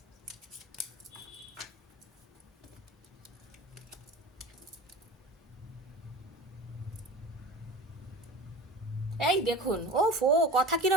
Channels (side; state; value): both; normal; correlation 0.35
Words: এই দেখুন, ও ফো, কথা